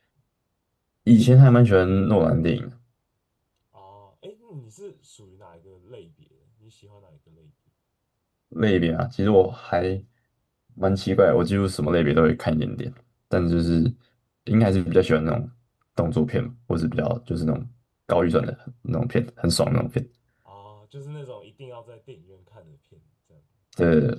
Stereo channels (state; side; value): identical; both; correlation 1.00